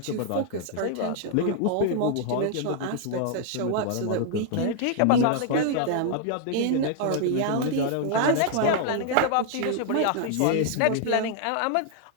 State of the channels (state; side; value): different; both; correlation 0.00